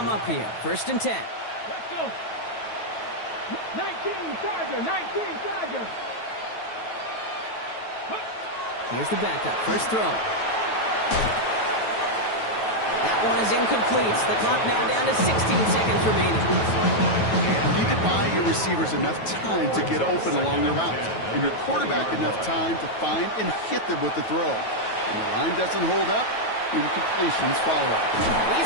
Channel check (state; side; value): late; right; 9.2 ms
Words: up here. First and 10. Let's go. 19 Charger, 19 Charger. Here's the backup. First throw. That one is incomplete. The clock now down to 16 seconds remaining. You need to buy your receivers enough time to get open along their route, and your quarterback enough time to find and hit them with the throw. When the line doesn't hold up, incompletions follow.